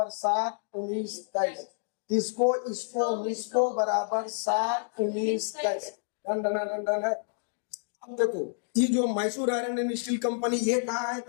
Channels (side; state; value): right; silent; digital silence